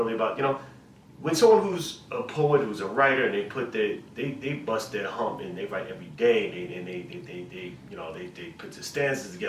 about, you know, when someone who's a poet, who's a writer, and they bust their hump and they write every day, they you know, they put the stanzas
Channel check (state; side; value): identical; both; correlation 1.00